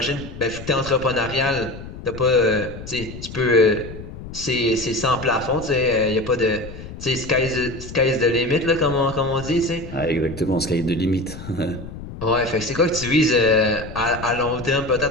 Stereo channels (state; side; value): noise; left; rumble, 12 dB below the sound